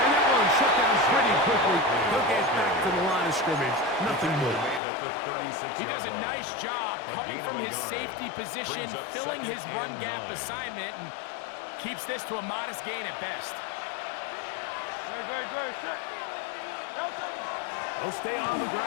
And that one shut down pretty quickly. He'll get back to the line of scrimmage. Nothing more. He does a nice job coming from his safety position, filling his run gap assignment, and keeps this to a modest gain at best. He'll stay on the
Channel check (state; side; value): drops out; right; at 4.8 s